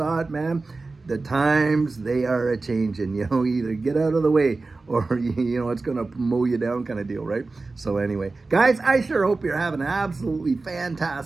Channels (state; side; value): quieter; left; 3.6 dB